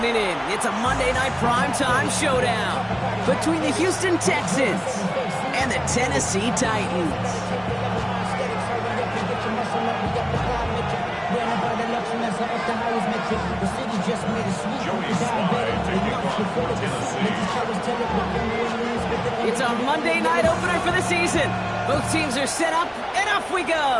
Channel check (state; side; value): identical; both; correlation 1.00